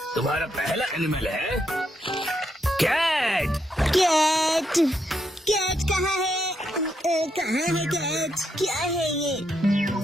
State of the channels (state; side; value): normal; both; correlation 0.79